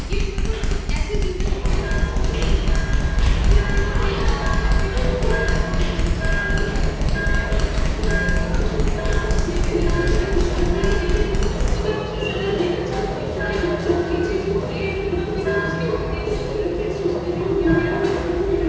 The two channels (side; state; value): both; identical; correlation 1.00